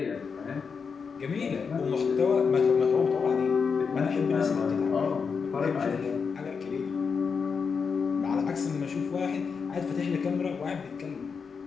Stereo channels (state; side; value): quieter; right; 5.7 dB